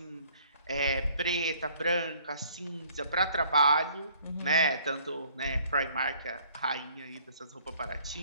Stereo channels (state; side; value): inverted; both; correlation -0.59